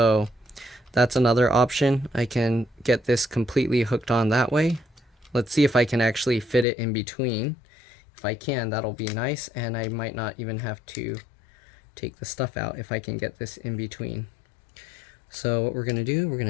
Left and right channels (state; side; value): drops out; right; at 6.7 s